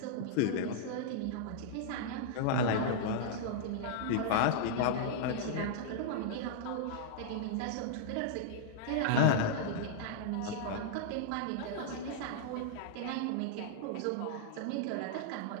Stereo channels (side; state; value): both; different; correlation -0.01